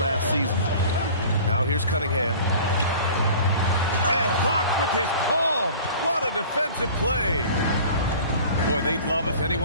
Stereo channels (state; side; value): inverted; both; correlation -0.43